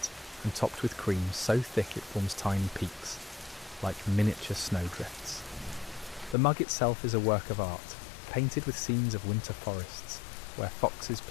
and topped with cream so thick it forms tiny peaks, like miniature snowdrifts. The mug itself is a work of art, painted with scenes of winter forests, where foxes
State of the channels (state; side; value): drops out; right; at 6.4 s